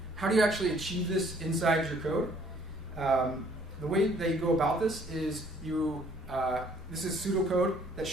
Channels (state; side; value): normal; both; correlation 0.60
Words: how do you actually achieve this inside your code? The way that you go about this is this is pseudocode that